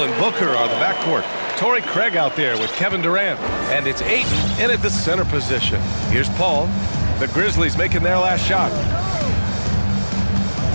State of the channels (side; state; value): both; inverted; correlation -1.00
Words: and Booker are the backcourt. Torrey Craig out there with Kevin Durant. And it's Ayton in at the center position. Here's Paul. The Grizzlies making their last shot.